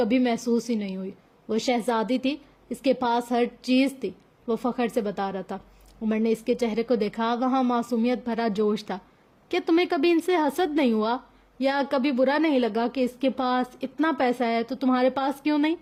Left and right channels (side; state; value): both; identical; correlation 1.00